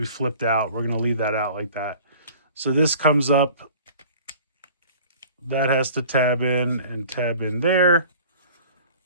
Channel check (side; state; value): both; inverted; correlation -0.46